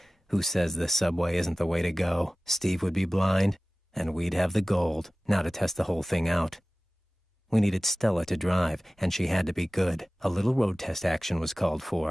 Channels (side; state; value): both; normal; correlation 0.97